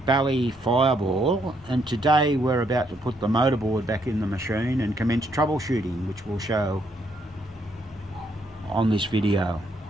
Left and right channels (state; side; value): normal; both; correlation 0.73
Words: fireball, and today we're about to put the motorboard back in the machine and commence troubleshooting, which we'll show on this video.